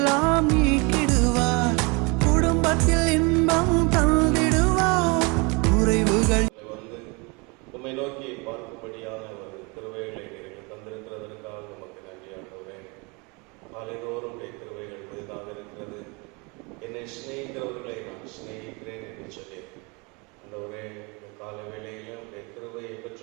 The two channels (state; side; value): quieter; left; 29.3 dB